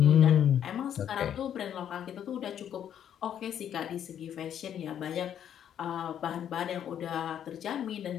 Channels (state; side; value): quieter; right; 9.6 dB